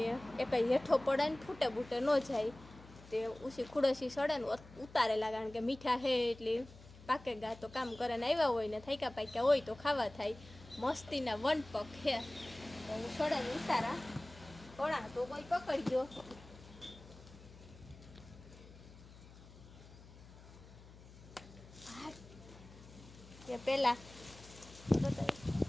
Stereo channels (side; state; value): left; noise; hum, 19 dB below the sound